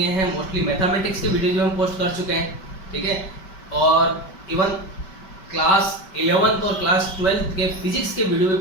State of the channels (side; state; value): right; late; 5.2 ms